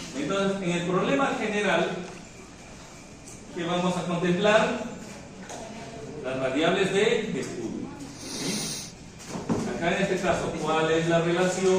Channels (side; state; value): both; identical; correlation 1.00